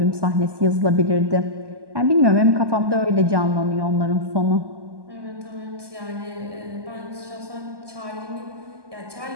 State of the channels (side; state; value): left; late; 1.2 ms